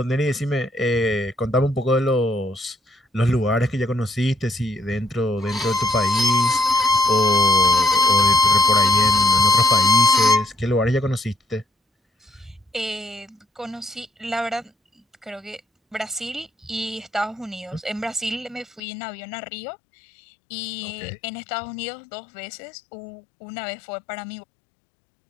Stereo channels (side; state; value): right; drops out; at 18.8 s